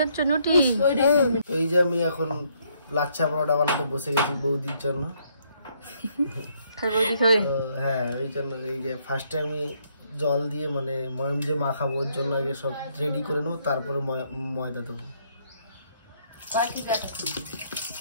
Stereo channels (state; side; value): inverted; both; correlation -0.70